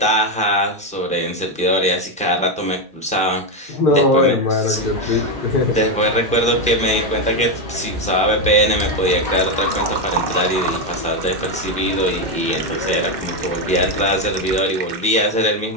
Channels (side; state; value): both; normal; correlation 0.08